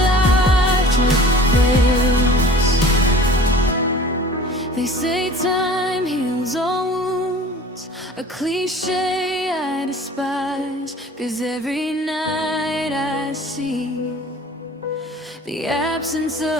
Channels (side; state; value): both; normal; correlation 0.44